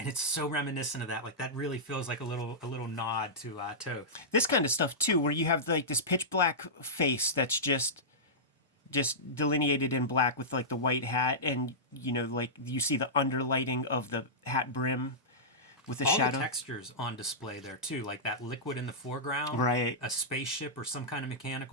it's so reminiscent of that. Like that really feels like a little nod to Toth. This kind of stuff too, where you have like this pitch black face that's just delineated in black with like the white hat, and you know, like you see the underlighting of the hat brim with the shadow. All the textures on display there too, like that liquid in the foreground, right? A spaceship or some kind of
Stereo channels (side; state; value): both; normal; correlation -0.14